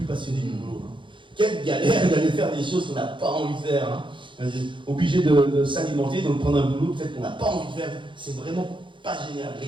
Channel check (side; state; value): left; late; 0.24 ms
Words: passionné du boulot. Hein. Quelle galère d'aller faire des choses qu'on n'a pas envie de faire. Hein. Obligé de s'alimenter, de prendre un boulot peut-être qu'on n'a pas envie de faire. C'est vraiment pas génial. Mais